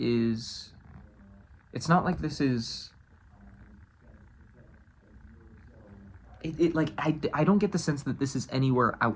is, it's not like this is, like, I don't get the sense that this is anywhere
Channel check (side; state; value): both; identical; correlation 1.00